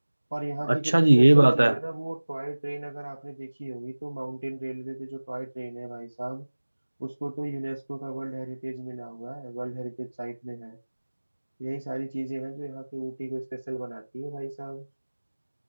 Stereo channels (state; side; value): inverted; both; correlation -1.00